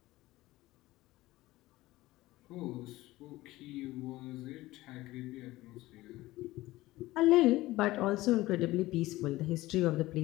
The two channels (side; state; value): right; quieter; 17.9 dB